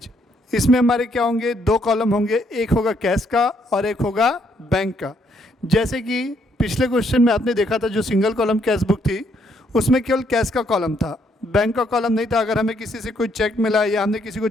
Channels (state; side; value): normal; both; correlation 0.71